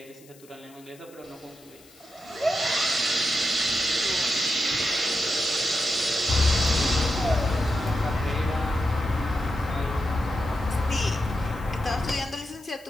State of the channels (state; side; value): noise; left; hiss, 25 dB below the sound